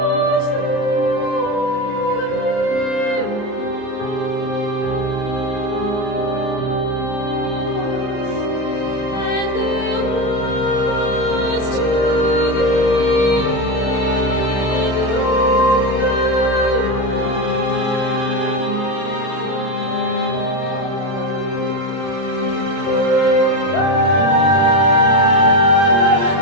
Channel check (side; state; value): right; late; 30 ms